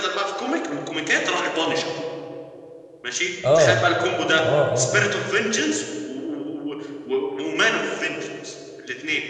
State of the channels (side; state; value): both; identical; correlation 1.00